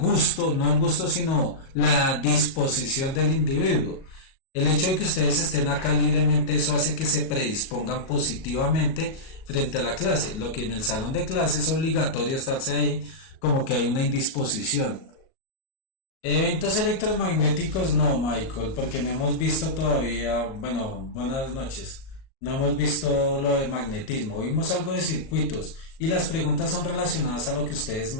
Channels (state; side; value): late; right; 37 ms